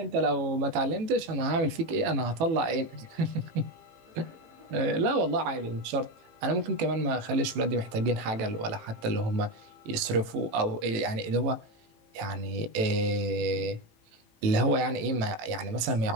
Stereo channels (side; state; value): left; late; 18 ms